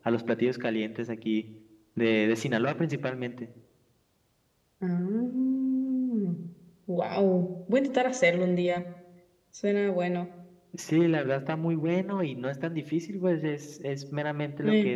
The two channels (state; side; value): identical; both; correlation 1.00